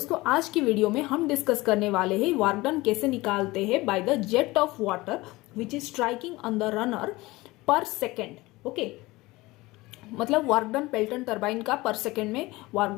आज की वीडियो में हम डिस्कस करने वाले हैं वर्क डन कैसे निकालते हैं bye the jet of water which is striking on the runner पर सेकेंड। ओके, मतलब वर्क डन पेल्टन टरबाइन का पर सेकेंड में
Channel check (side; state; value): right; quieter; 20.7 dB